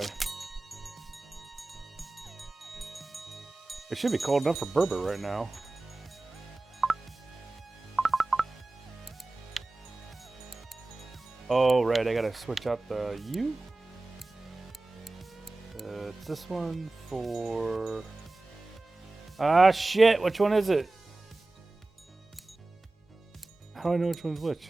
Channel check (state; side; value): quieter; left; 3.0 dB